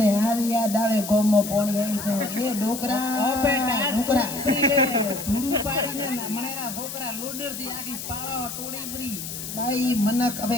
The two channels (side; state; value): left; noise; hiss, 8 dB below the sound